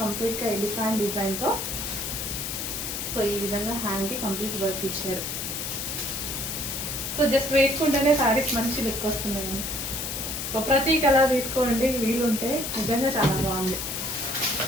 కంప్లీట్ గా ఎలిఫెంట్ డిజైన్ తో సో ఈ విధంగా హ్యాండ్ కి కంప్లీట్ వర్క్ ఇచ్చారు. సో జస్ట్ వేసుకుంటేనే శారీస్ మంచి లుక్ వస్తున్నాయి. సో ప్రతి కలర్ తీసుకోండి వీలుంటే, నిజంగా చాలా బాగుంది.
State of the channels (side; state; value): left; noise; hiss, 4 dB below the sound